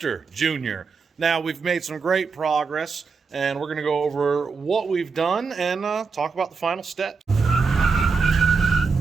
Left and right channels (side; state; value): left; quieter; 4.9 dB